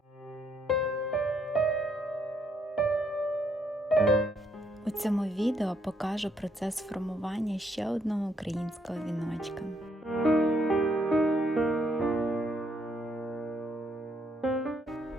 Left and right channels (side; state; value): both; normal; correlation 0.72